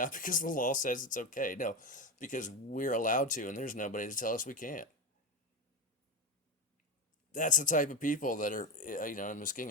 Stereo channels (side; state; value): both; normal; correlation 0.17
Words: because the law says it's okay. No, because we're allowed to, and there's nobody to tell us we can't. That's the type of people that are, in